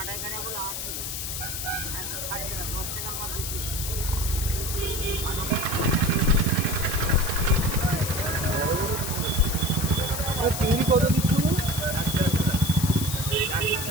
চিংড়ি কত দিচ্ছ?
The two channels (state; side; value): noise; left; hiss, 4 dB below the sound